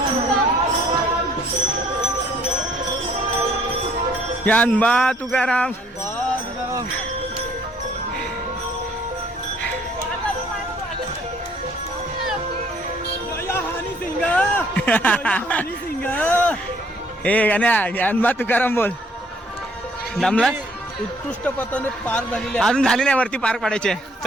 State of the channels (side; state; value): both; normal; correlation 0.63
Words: ज्ञानबा तुकाराम ए गाण्या ज्ञानबा तुकाराम बोल. दमला उत्कृष्ट पथाने पार झालेली अजून झाली नाही, वरती पार पाडायचे.